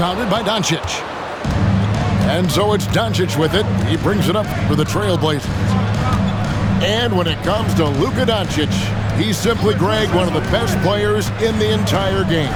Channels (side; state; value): both; identical; correlation 1.00